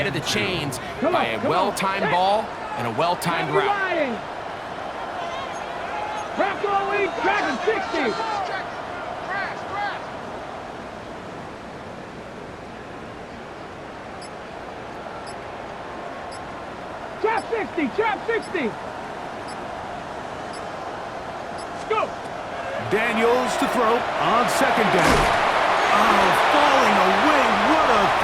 of the chains by a well-timed ball and a well-timed route. Bronco lead, Dragon 60. Trap 60, trap 60. Go. Daniels to throw on second down. Oh, falling away. What a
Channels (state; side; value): identical; both; correlation 1.00